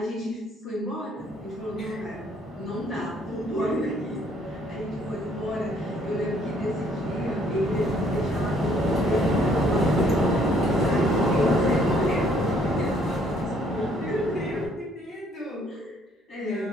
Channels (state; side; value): normal; both; correlation 0.64